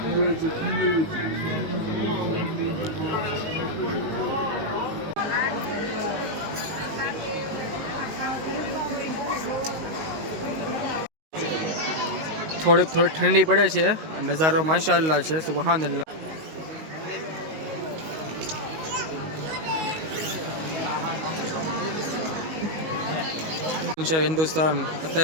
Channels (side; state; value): left; late; 19 ms